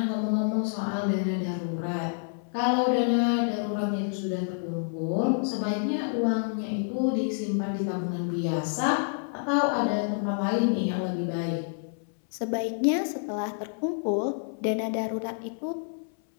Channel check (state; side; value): silent; right; 59 dB below the other